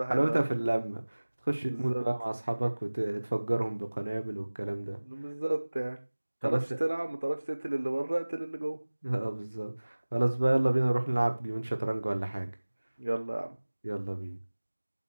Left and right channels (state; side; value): inverted; both; correlation -1.00